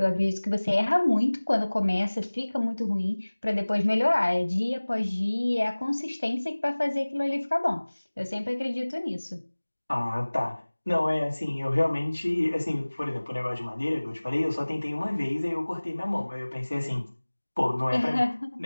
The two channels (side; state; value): both; inverted; correlation -1.00